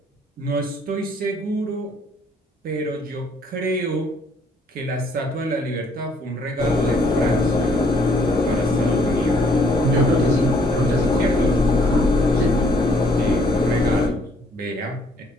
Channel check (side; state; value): both; normal; correlation 0.65